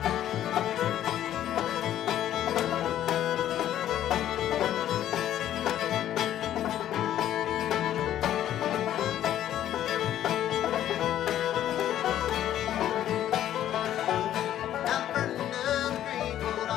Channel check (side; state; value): right; quieter; 11.8 dB